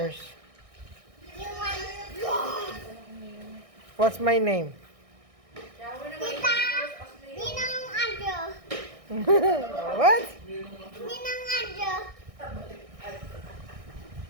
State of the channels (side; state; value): left; late; 1.6 ms